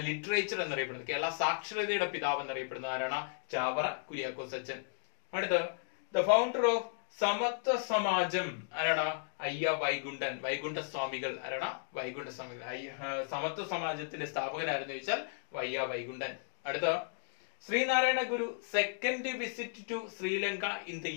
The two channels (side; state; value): right; silent; digital silence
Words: literature എന്നറിയപ്പെടുന്നത്, കേരള സാക്ഷരതയുടെ പിതാവ് എന്നറിയപ്പെടുന്നത് ആരാണ്? ചാവറ കുര്യാക്കോസ് അച്ഛൻ. അടുത്ത, ദ ഫൗണ്ടർ ഓഫ് സമത്വ സമാജം ആരാണ്? അയ്യ വൈകുണ്ഠൻ. വൈകുണ്ഠ സ്വാമികൾ. ആരാണ്? വൈകുണ്ഠ സ്വാമികൾ. സമത്വ സമാജത്തിന്റെ സ്ഥാപകനാരെന്ന് ചോദിച്ചാൽ വയ്യ വൈകുണ്ഠൻ. അടുത്ത, Sree Narayana Guru second visit to Sri Lanka in the